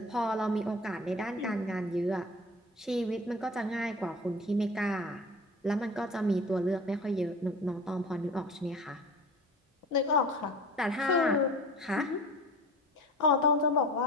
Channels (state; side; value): normal; both; correlation 0.38